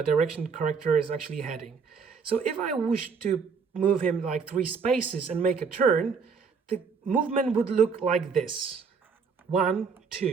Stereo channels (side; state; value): left; quieter; 5.6 dB